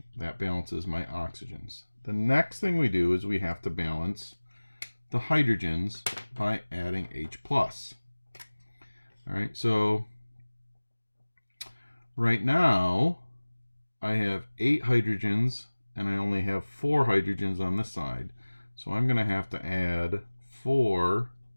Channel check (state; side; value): inverted; both; correlation -1.00